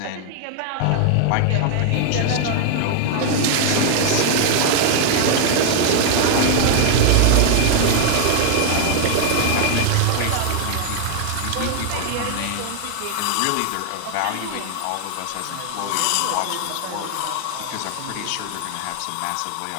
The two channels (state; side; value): different; both; correlation 0.00